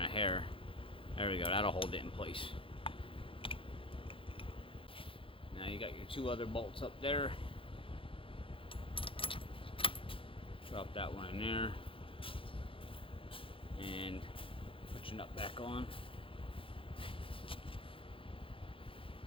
hair. There we go, that'll hold it in place. Now you got your two other bolts up there. Drop that one in there. And put your nut back on.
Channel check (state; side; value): late; right; 0.26 ms